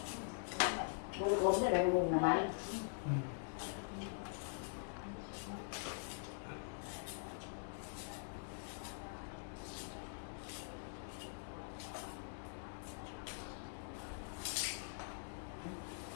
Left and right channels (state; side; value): silent; right; digital silence